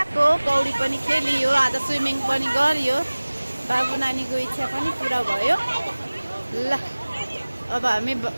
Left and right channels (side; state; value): both; inverted; correlation -1.00